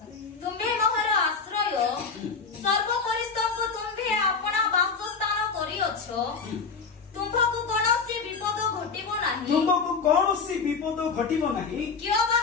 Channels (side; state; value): right; quieter; 5.1 dB